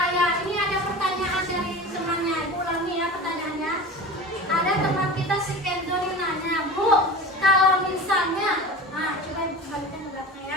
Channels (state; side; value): normal; both; correlation 0.33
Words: Ya, ini ada pertanyaan dari temannya. Ibu ulangi ya pertanyaannya. Ada teman kita si Kenzo yang nanya, Bu, kalau misalnya, coba ibu balikan ke belakang